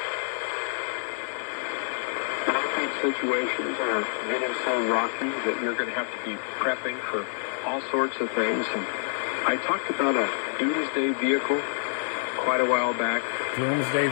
I think situations are getting so rocky that you're going to have to be prepping for all sorts of things. And I talked about a doomsday vehicle quite a while back.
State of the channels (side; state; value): right; silent; digital silence